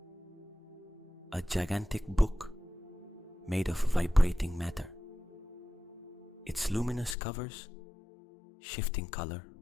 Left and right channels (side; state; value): right; drops out; at 7.2 s